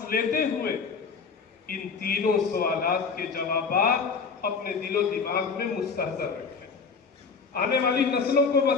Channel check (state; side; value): quieter; right; 5.2 dB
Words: लेते हुए इन तीनों सवालात के जवाबात अपने दिलो दिमाग में मुस्तहज़र रखें। आने वाली नस्लों को